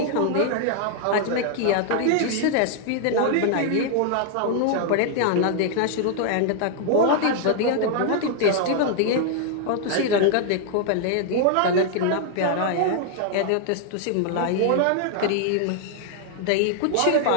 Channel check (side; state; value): both; different; correlation 0.00